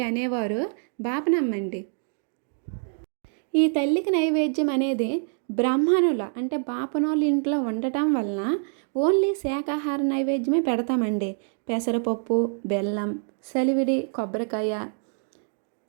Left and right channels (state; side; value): silent; left; 56 dB below the other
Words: అనేవారు బాపనమ్మండి. ఈ తల్లికి నైవేద్యం అనేది బ్రాహ్మణుల అంటే బాపనోళ్ళ ఇంట్లో ఉండటం వలన ఓన్లీ శాకాహార నైవేద్యమే పెడతామండి. పెసరపప్పు, బెల్లం, సలివిడి, కొబ్బరికాయ,